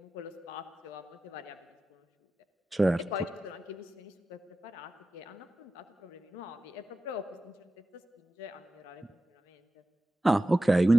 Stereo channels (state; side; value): normal; both; correlation 0.94